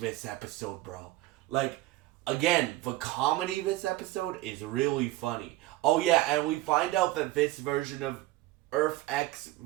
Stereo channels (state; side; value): quieter; left; 17.8 dB